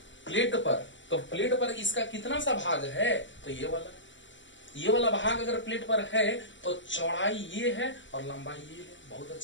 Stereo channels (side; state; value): right; late; 0.54 ms